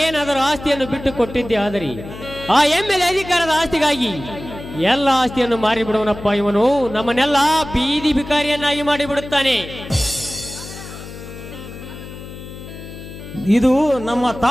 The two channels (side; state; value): left; noise; hum, 13 dB below the sound